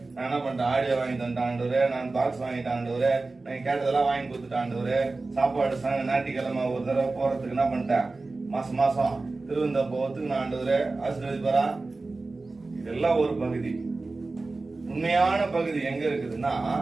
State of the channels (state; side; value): quieter; left; 3.5 dB